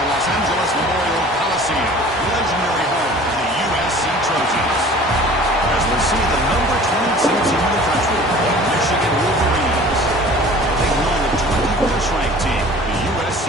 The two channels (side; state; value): both; normal; correlation 0.46